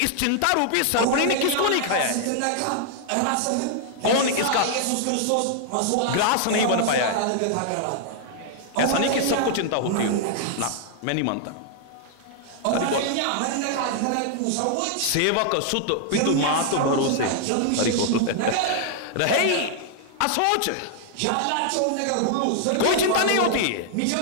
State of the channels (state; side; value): different; both; correlation 0.00